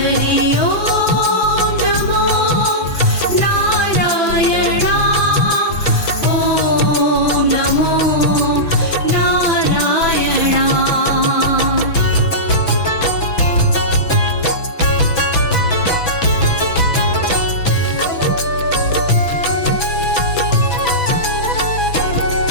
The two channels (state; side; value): late; right; 6.0 ms